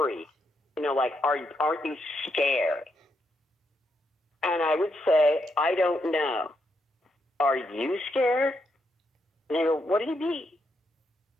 like, aren't you scared? And I would say, I don't know. Are you scared? And they go, what do you mean?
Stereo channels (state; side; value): normal; both; correlation 0.80